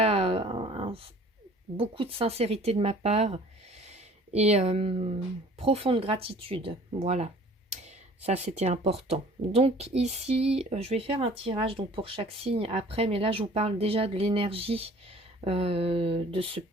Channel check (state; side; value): normal; both; correlation 0.50